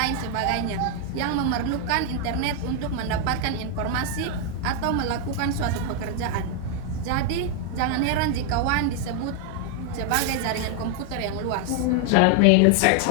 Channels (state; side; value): different; both; correlation 0.00